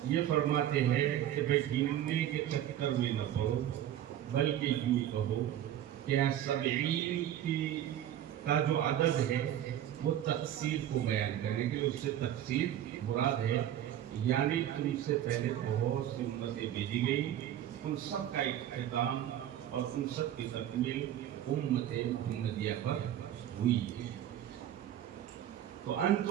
یہ فرماتے ہیں کہ بھئی گننے کے چکر میں نہ پڑو، بلکہ یوں کہو کہ 70 کا جو عدد ہے وہ تقصیر کو بیان کرنے کے لیے، اس سے تقصیر مراد ہے، یعنی تم سے پہلے بہت سی امتیں بھیجی گئی، ان سب کا اختتام اور ان سب کی تکمیل امت محمدیہ پر ہوئی ہے۔ تو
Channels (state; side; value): quieter; left; 11.5 dB